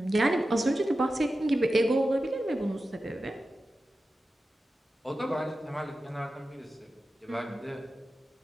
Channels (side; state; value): both; normal; correlation 0.93